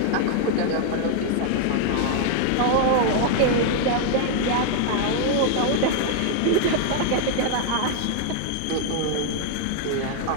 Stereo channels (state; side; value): different; both; correlation 0.01